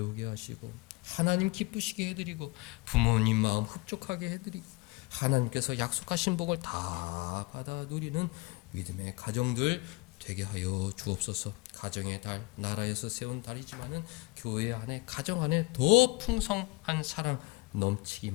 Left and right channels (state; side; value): quieter; right; 23.8 dB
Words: 하시고 하나님 기쁘시게 해드리고 부모님 마음 흡족하게 해드리고 하나님께서 약속하신 복을 다 받아 누리는 믿음의 가정들 되게 하여 주옵소서. 가정의 달, 나라에서 세운 달이지만은 교회 안에 가정 안에 더 풍성한 사랑